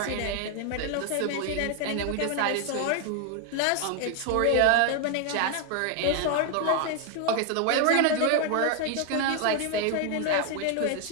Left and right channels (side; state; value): both; different; correlation 0.00